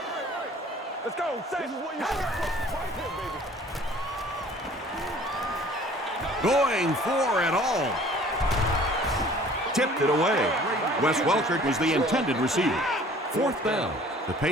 Let's go. This is what you right here, baby. Going for it all. Tipped it away. Wes Welker was the intended receiver. Fourth down. The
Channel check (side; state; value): both; normal; correlation 0.51